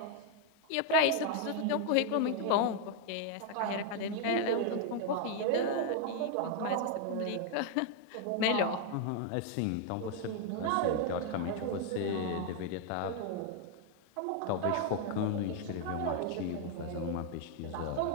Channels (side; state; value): both; different; correlation 0.00